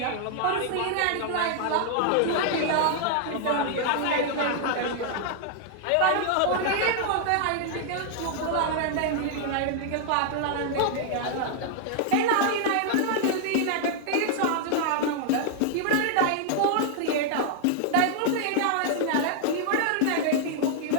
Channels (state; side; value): different; both; correlation -0.01